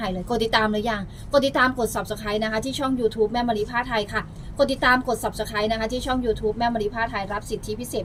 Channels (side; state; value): both; identical; correlation 1.00